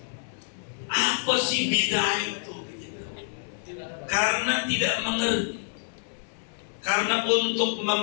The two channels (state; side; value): silent; right; 60 dB below the other